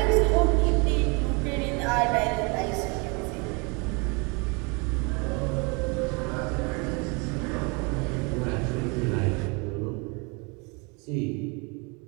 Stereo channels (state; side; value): quieter; left; 30.8 dB